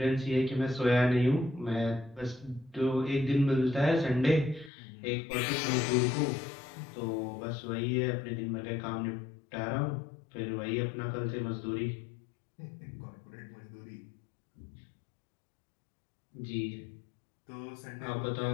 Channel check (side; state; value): right; drops out; at 4.7 s